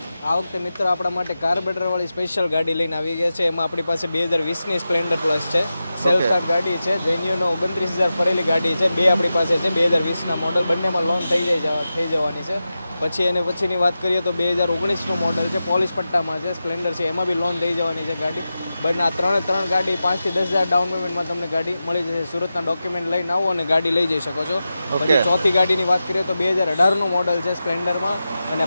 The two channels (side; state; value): both; inverted; correlation -0.92